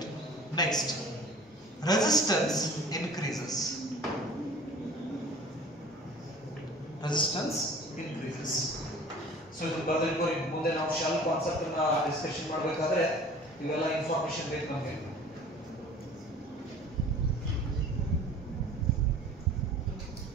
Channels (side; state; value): both; normal; correlation 0.45